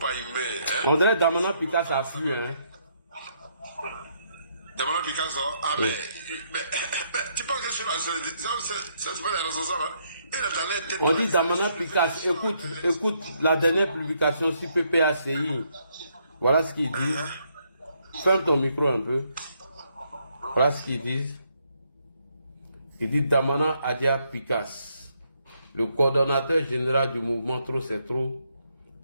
humains. Hein? On dirait Damana Picasso a fui, hein. Damana Picasso, ah, oui. mais tu penses que je suis là, c'est pas les responsables, hein? On dit Damana Picasso, écoute la dernière publication sur PPACI. Voilà ce qu'ils disent. Ferme ton micro un peu. Voilà ce qu'ils disent. Il dit Damana Adia Picasso, le coordonnateur général du mouvement Trop c'est trop,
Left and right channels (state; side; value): inverted; both; correlation -0.73